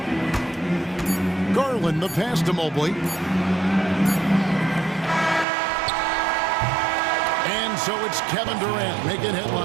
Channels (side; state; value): left; drops out; at 5.5 s